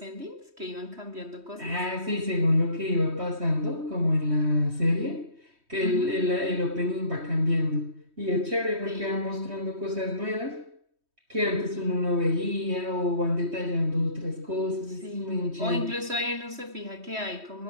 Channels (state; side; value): late; left; 3.1 ms